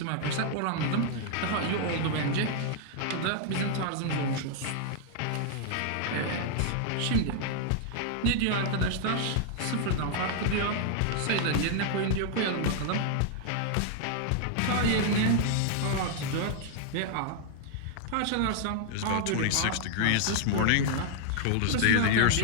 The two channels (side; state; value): both; different; correlation -0.01